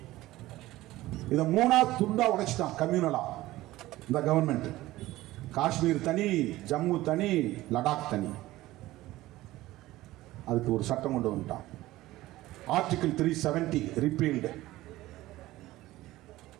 இதை 3ஆ துண்டா உடைச்சிட்டான் கம்யூனலா இந்த கவர்மெண்ட். காஷ்மீர் தனி, ஜம்மு தனி, லடாக் தனி. அதுக்கு ஒரு சட்டம் கொண்டு வந்துட்டான், ஆர்டிகிள் 370 ரிப்பீல்டு.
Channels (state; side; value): quieter; left; 17.0 dB